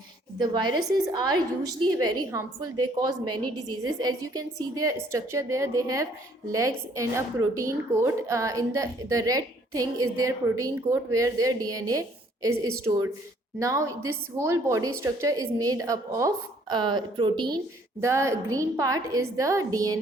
The viruses are usually very harmful. They cause many diseases. As you can see their structure there, they have legs and a protein coat. In the red thing is their protein coat where their DNA is stored. Now this whole body structure is made up of protein. The green part is the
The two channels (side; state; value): both; normal; correlation 0.62